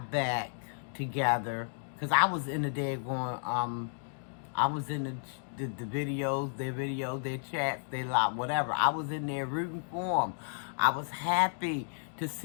back together, because I was in the day going, I was in the videos, their chats, their lot, whatever. I was in there rooting for them. I was happy to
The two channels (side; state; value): right; silent; digital silence